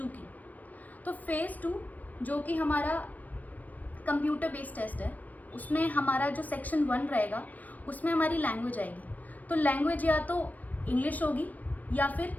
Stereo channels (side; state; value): right; late; 0.079 ms